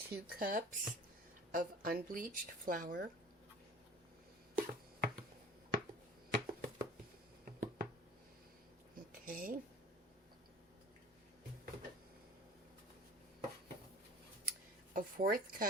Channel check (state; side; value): normal; both; correlation 0.45